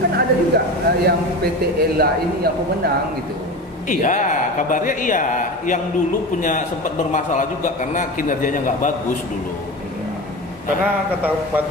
kan ada juga yang PT Ela ini yang pemenang gitu. Iya, kabarnya iya. Yang dulu punya sempat bermasalah juga karena kinerjanya nggak bagus dulu. Karena kata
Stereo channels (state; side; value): normal; both; correlation 0.29